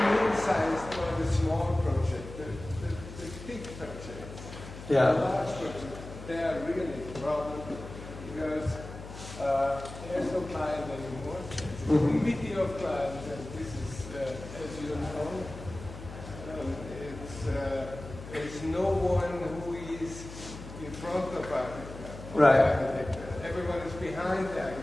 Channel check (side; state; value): left; noise; hum, 13 dB below the sound